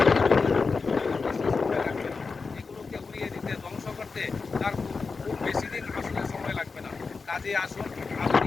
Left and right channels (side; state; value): right; quieter; 4.6 dB